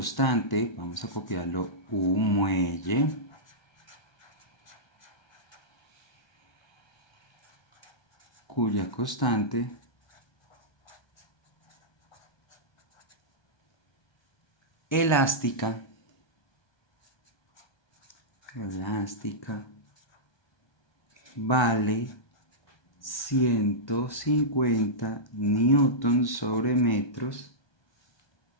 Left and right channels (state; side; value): late; right; 1.3 ms